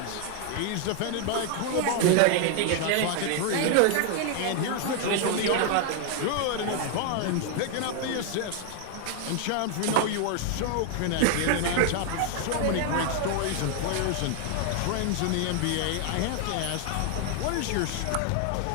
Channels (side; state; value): both; different; correlation 0.00